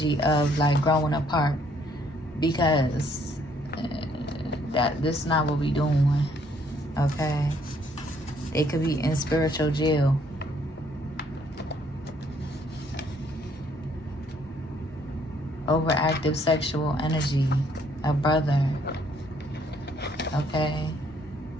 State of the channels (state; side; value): normal; both; correlation 0.66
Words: of like growing apart, because this is not what we doing. Okay, they could be in spiritual jail. Overactive sexual energy, a brother. Okay.